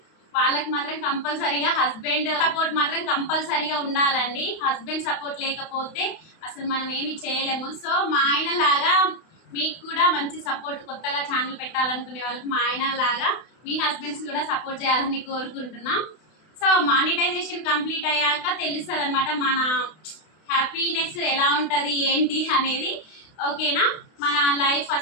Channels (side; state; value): right; late; 32 ms